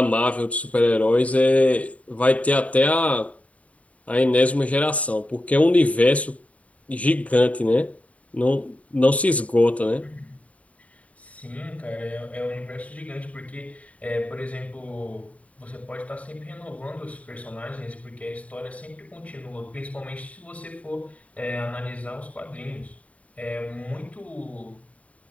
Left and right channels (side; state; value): right; late; 0.067 ms